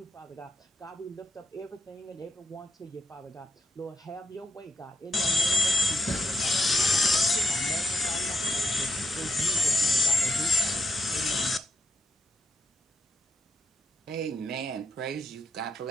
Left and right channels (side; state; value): both; normal; correlation 0.84